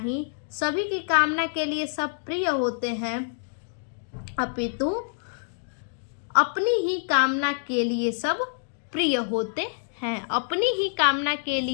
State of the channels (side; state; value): right; silent; digital silence